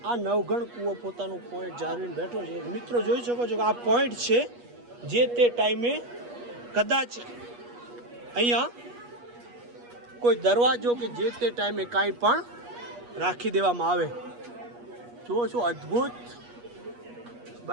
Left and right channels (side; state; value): left; late; 8.3 ms